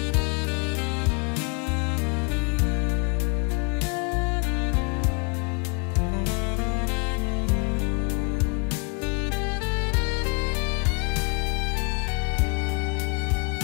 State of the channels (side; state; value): right; quieter; 33.8 dB